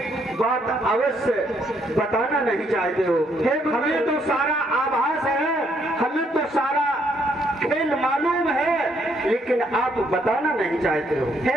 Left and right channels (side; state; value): both; normal; correlation 0.71